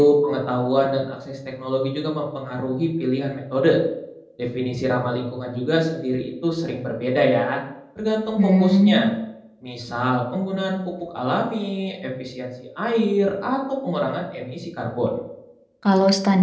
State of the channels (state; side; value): identical; both; correlation 1.00